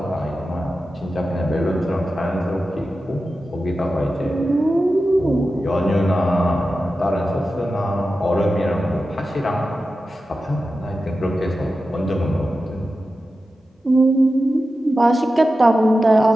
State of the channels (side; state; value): both; normal; correlation 0.92